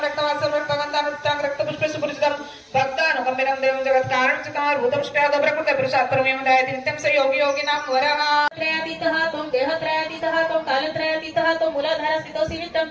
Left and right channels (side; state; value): both; identical; correlation 1.00